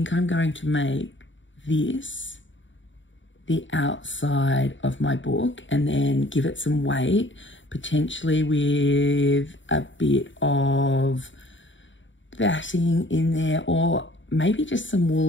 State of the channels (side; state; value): right; late; 0.55 ms